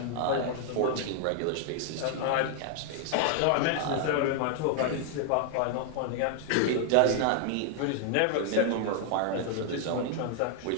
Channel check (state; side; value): different; both; correlation 0.00